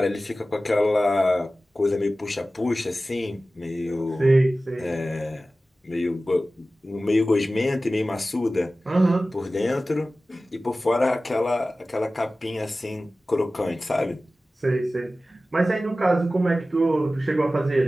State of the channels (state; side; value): normal; both; correlation 0.96